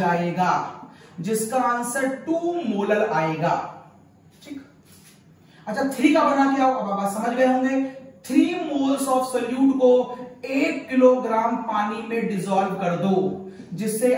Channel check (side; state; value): both; identical; correlation 1.00